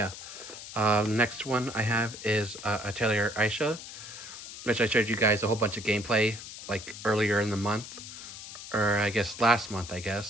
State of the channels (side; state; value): left; noise; hiss, 12 dB below the sound